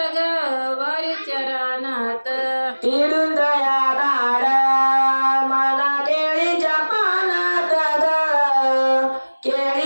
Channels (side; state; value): both; inverted; correlation -1.00